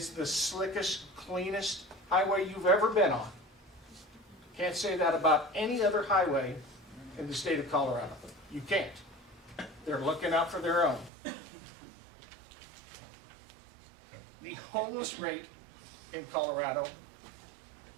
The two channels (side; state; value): left; drops out; at 11.1 s